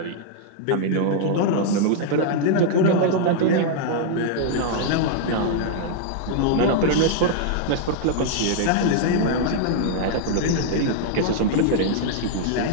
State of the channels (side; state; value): both; different; correlation -0.01